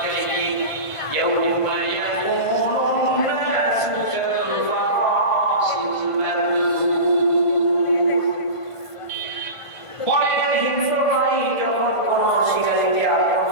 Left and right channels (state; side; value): late; right; 1.5 ms